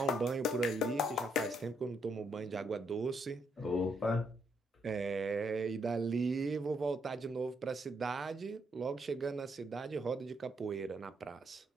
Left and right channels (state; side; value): normal; both; correlation 0.75